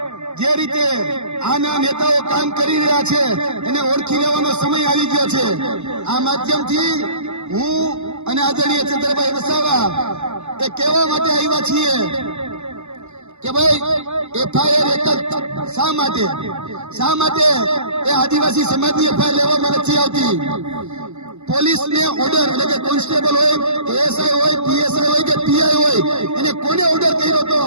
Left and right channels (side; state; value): left; late; 0.82 ms